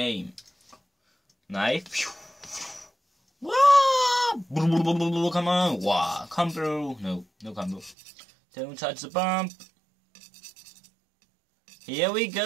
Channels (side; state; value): left; drops out; at 8.0 s